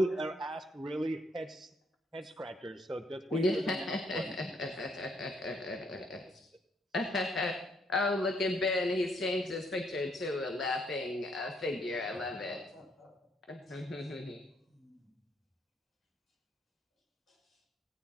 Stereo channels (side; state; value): both; normal; correlation 0.70